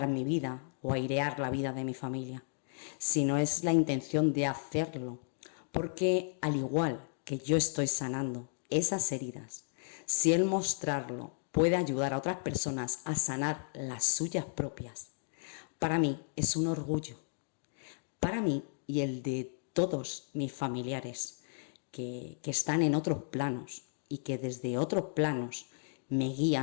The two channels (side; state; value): right; silent; digital silence